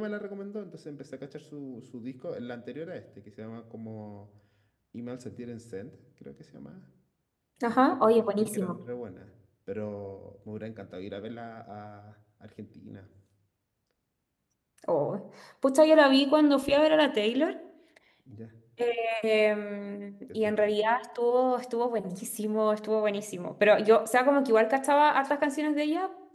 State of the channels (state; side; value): identical; both; correlation 1.00